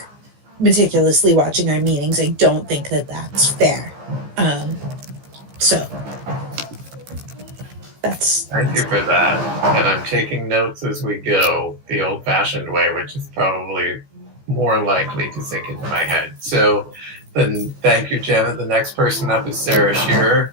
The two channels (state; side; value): late; left; 15 ms